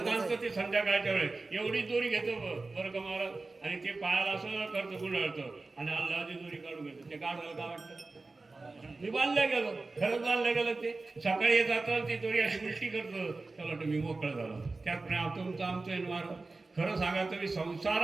आणतं ते संध्याकाळच्या वेळेस, एवढी दोरी घेतो बरं का महाराज, आणि ते पायाला असं करतं गुंडाळतं, आणि अल्लाची दोरी काढून घेतो. ते गाढवाला काय वाटतं? मी बांधल्या गेलो, खरंच बांधल्या गेलं. ते सकाळी जातं, ती दोरी अशी उलटी करतं, त्याला वाटतं मी मोकळं झालो. त्याप्रमाणे तुमचं आमचं महाराज. खरं सांगा, तुम्ही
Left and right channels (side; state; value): left; quieter; 3.5 dB